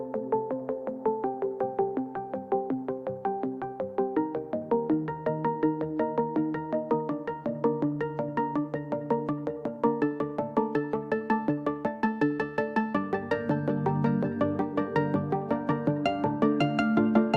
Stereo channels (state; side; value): identical; both; correlation 1.00